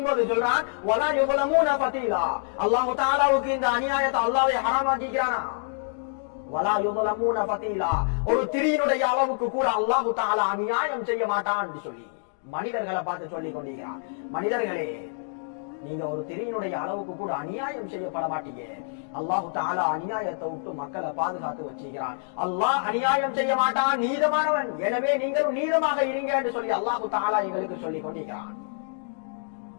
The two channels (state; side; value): silent; right; digital silence